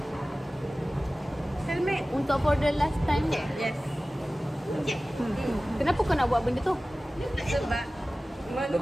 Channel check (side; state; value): both; normal; correlation 0.97